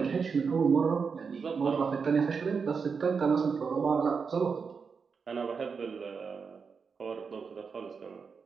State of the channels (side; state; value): left; quieter; 5.6 dB